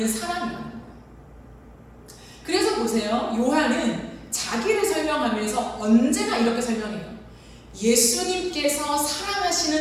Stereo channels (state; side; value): identical; both; correlation 1.00